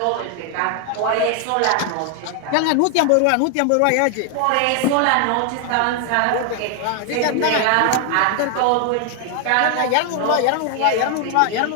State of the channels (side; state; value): both; different; correlation 0.00